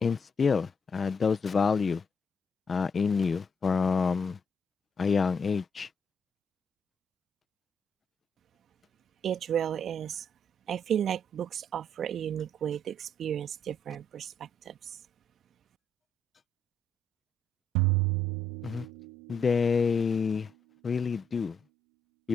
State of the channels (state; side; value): normal; both; correlation 0.73